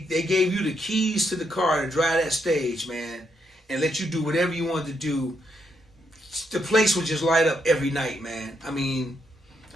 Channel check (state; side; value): normal; both; correlation 0.78